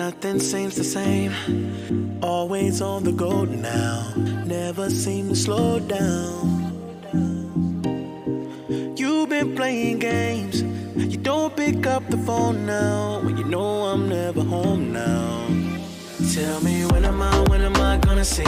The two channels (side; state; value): both; identical; correlation 1.00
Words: Nothing seems the same. Always on the go now. Never seem to slow down. You've been playing games. You don't pick up the phone now when you know I'm never home now. Tell me when am I gonna